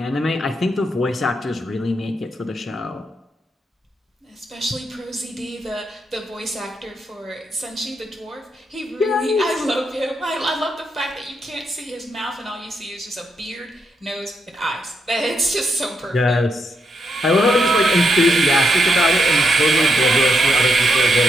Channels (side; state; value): both; normal; correlation 0.80